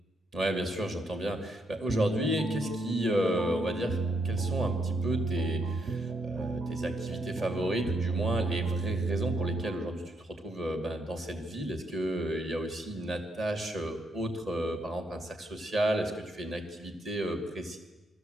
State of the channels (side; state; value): both; normal; correlation 0.76